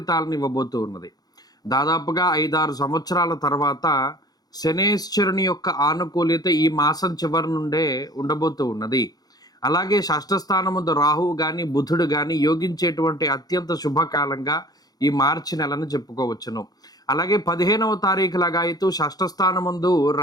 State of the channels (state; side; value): late; right; 0.19 ms